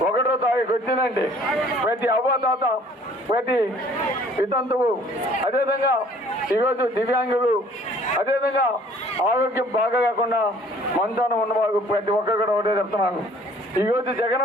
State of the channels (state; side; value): normal; both; correlation 0.55